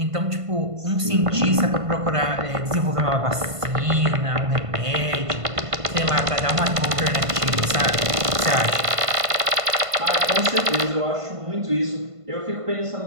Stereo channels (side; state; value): left; late; 1.5 ms